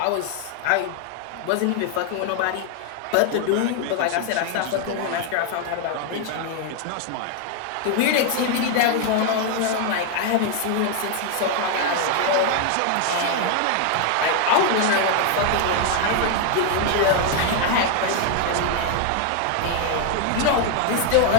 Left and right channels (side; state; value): both; different; correlation 0.00